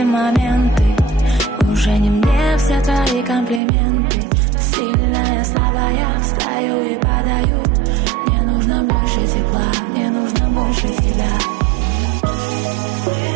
моменты. Уже не мне все твои комплименты. Сильная, слабая, встаю и падаю. Мне нужно больше тепла, мне нужно больше тебя.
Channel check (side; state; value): left; drops out; at 3.6 s